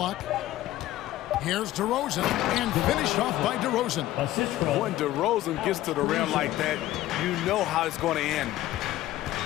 Here's DeRozan, and finished off by DeRozan. When DeRozan gets to the rim like that, you know how it's going to end.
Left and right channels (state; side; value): quieter; right; 14.8 dB